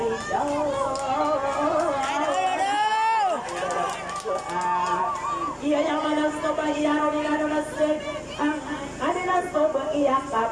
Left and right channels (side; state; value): both; identical; correlation 1.00